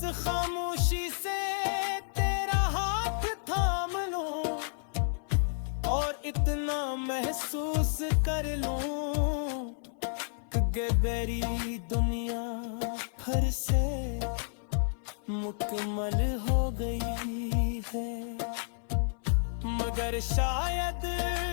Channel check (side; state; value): right; silent; 56 dB below the other